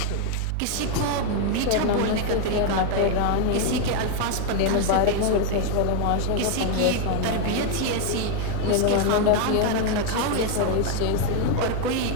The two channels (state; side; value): different; both; correlation 0.01